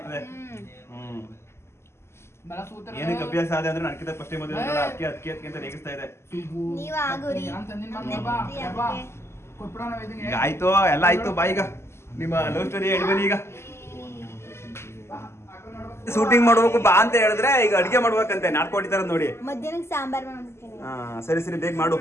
ಏನಕ್ಕೆ ಅಭ್ಯಾಸ ಆದ ಅಂದ್ರೆ ನನ್ಕಿಂತ ಫಸ್ಟ್ ಮದುವೆ ಅದಕ್ಕೆ ಅಂತ ರೇಗಿಸ್ತಾ ಇದೆ. ನೀವ್ ಆಗುರಿ. ಈಗ ಆಯ್ತು, ಎಲ್ಲ ಆಯ್ತು. ಬಾ ಈಗ ನಿಮ್ಮ ಲವ್ ಸ್ಟೋರಿ ಹೇಳಿ ಬನ್ನಿ. ಈಗ ಶೂಟಿಂಗ್ ಮಾಡ್ಬೇಕು ಬಾ ಅಂತ ಹೇಳಿದ್ರೆ ಈಗ ಅಡಿಗೆ ಮಾಡ್ಬೇಕಂತೆ, ನಾಟ್ಕೊಂಡಿತಾರ ನೋಡಿ. ಮಧ್ಯಾಹ್ನಕ್ಕೆ ಸಾಂಬಾರ್ ಮಾಡ್ಬಿಡ್ತೀನಿ. ಹಾ ಸರಿ ಬೇಗ ಮಾಡು.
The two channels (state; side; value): late; right; 0.12 ms